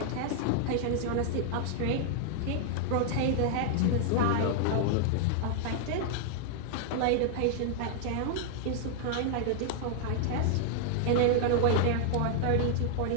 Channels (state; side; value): different; both; correlation 0.00